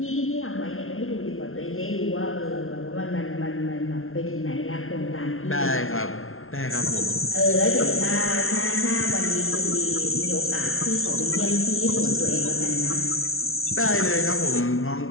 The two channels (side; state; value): right; late; 0.61 ms